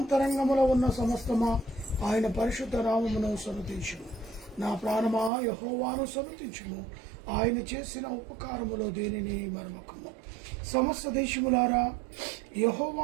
ఉన్న సమస్తమా ఆయన పరిశుద్ధ నామమును సన్నతించుము. నా ప్రాణమా యెహోవాను సన్నతించుము, ఆయన చేసిన ఉపకారములో దేనిని మరమకము. సమస్త దేశములారా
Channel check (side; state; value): left; drops out; at 5.3 s